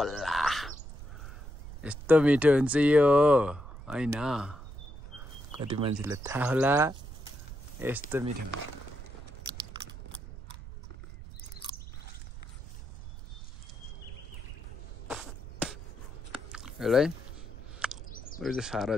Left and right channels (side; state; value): right; noise; rumble, 13 dB below the sound